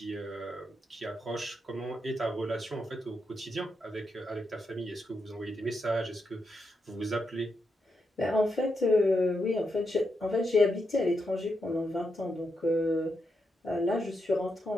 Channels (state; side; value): normal; both; correlation 0.84